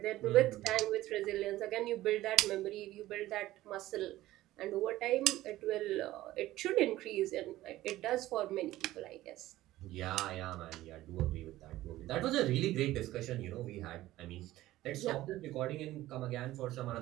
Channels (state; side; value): quieter; left; 15.8 dB